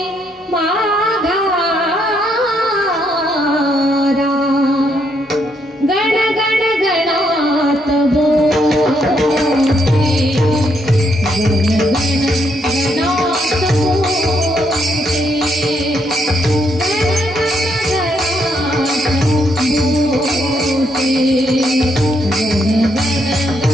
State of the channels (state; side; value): normal; both; correlation 0.75